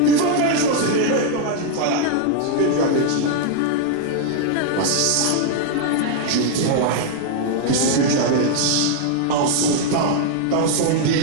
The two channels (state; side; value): different; both; correlation 0.00